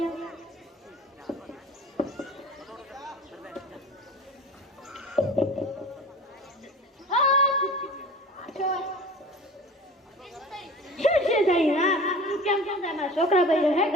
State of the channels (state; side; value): normal; both; correlation 0.38